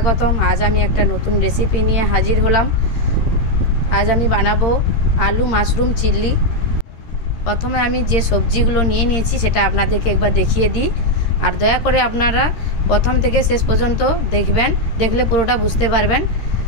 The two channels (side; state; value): right; late; 13 ms